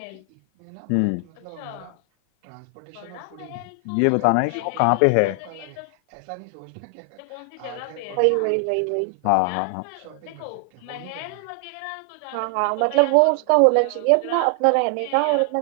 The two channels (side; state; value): both; different; correlation 0.00